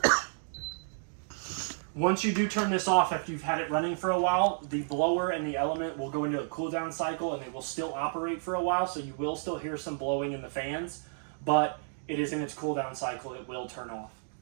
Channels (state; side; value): silent; left; digital silence